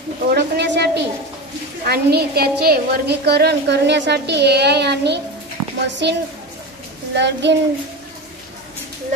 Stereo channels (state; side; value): normal; both; correlation 0.24